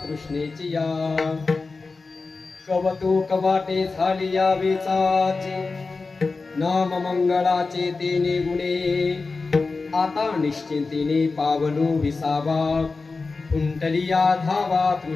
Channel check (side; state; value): right; quieter; 4.0 dB